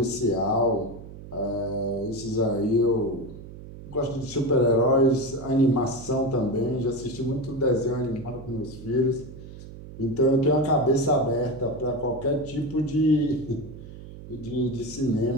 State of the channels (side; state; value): right; noise; hum, 14 dB below the sound